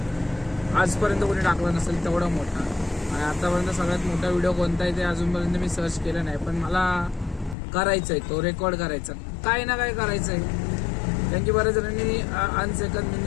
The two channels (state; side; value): drops out; right; at 7.6 s